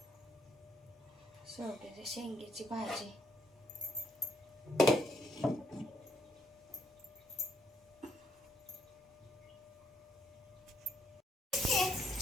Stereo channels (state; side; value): normal; both; correlation 0.73